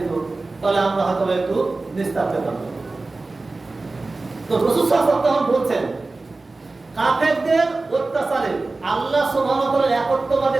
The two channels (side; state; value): left; quieter; 3.4 dB